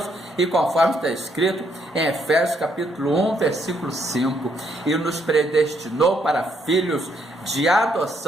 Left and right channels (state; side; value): normal; both; correlation 0.73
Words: E conforme está escrito em Efésios capítulo 1, versículo 5, e nos predestinou para filhos de